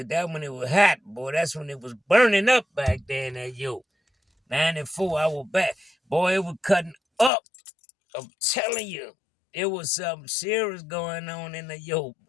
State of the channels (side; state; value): right; drops out; at 7.3 s